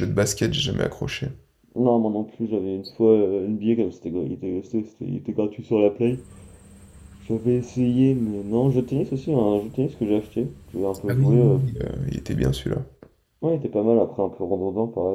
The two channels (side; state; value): both; identical; correlation 1.00